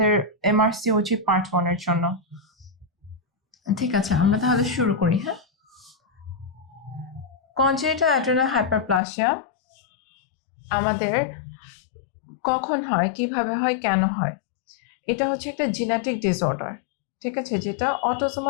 এমআরসিওজি পার্ট 1 এর জন্য। ঠিক আছে, আমরা তাহলে শুরু করি। হ্যাঁ, কনজেনিটাল অ্যাড্রেনাল হাইপারপ্লাসিয়া আমাদের কখন হয়, কিভাবে হয়, কেন হয়? এটা হচ্ছে একটা জেনেটিক ডিসঅর্ডার, ঠিক আছে, যেটা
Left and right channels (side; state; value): right; drops out; at 9.0 s